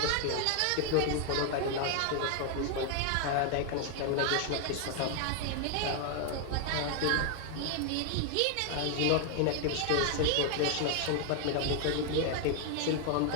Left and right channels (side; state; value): both; different; correlation 0.00